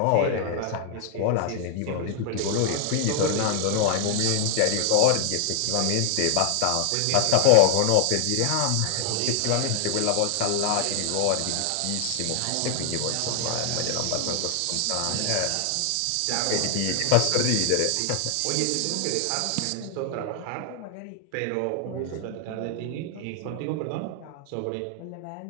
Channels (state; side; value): different; both; correlation 0.00